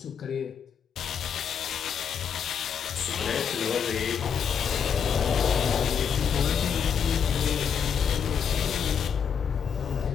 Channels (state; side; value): quieter; right; 7.2 dB